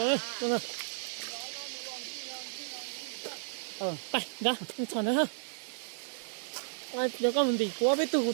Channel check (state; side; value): silent; left; 56 dB below the other